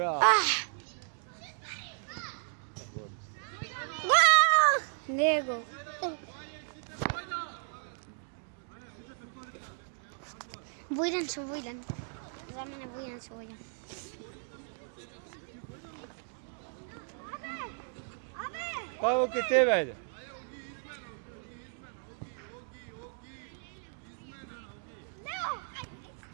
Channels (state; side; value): silent; left; 55 dB below the other